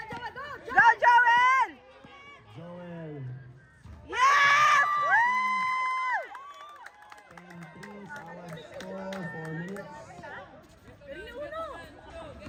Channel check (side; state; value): both; identical; correlation 1.00